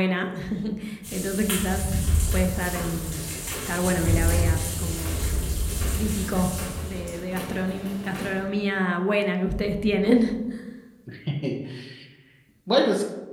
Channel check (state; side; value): identical; both; correlation 1.00